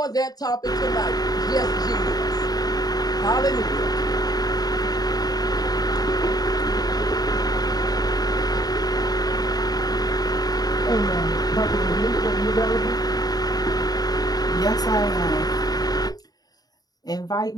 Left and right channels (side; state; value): right; late; 0.19 ms